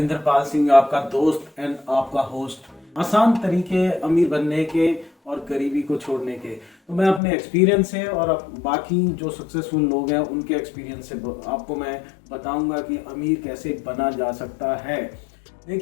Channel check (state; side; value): drops out; right; at 7.2 s